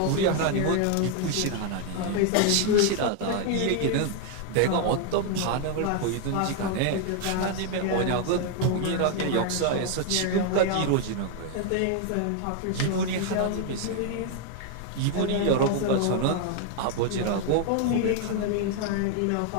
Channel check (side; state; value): both; different; correlation 0.00